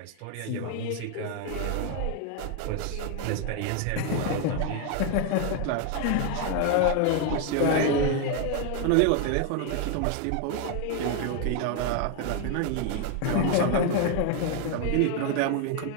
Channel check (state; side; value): different; both; correlation 0.01